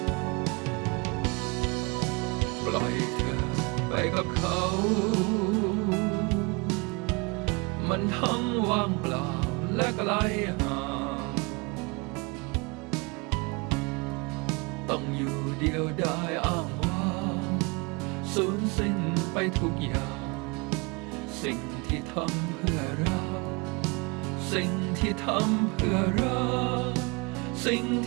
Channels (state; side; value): quieter; left; 28.6 dB